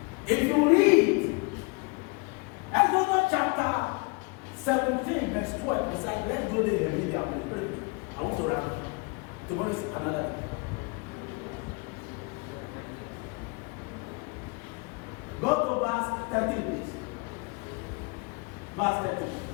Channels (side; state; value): right; quieter; 30.0 dB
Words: if you read Exodus chapter 17, verse 12, he said, let's go there and read the Bible. I want to wrap. Tomorrow is another day. Go to verse 13, please. Verse 13.